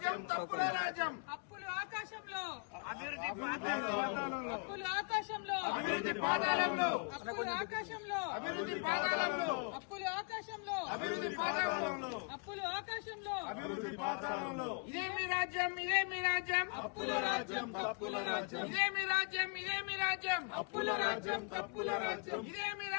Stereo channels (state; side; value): quieter; right; 36.0 dB